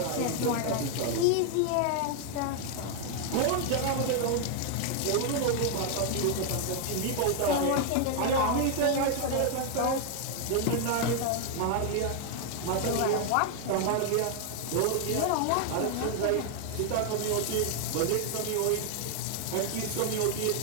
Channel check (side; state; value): both; different; correlation 0.00